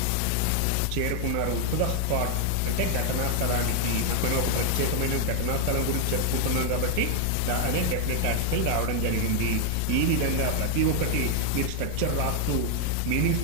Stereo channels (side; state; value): both; different; correlation 0.00